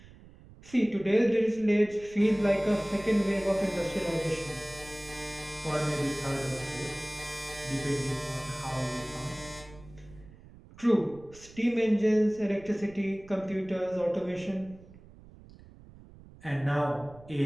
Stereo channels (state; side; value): noise; right; rumble, 21 dB below the sound